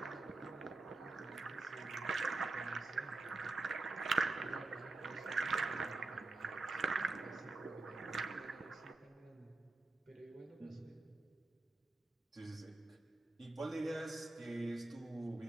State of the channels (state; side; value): quieter; left; 3.3 dB